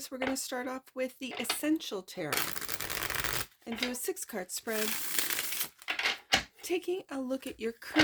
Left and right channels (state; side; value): identical; both; correlation 1.00